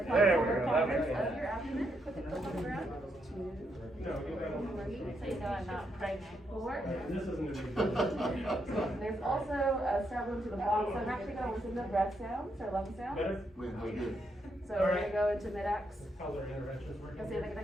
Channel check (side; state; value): both; normal; correlation 0.79